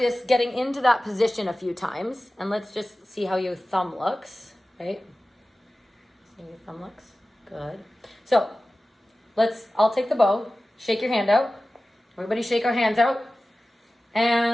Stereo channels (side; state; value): both; normal; correlation 0.96